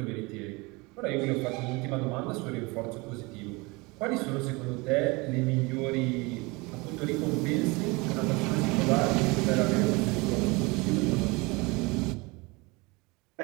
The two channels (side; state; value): left; quieter; 25.6 dB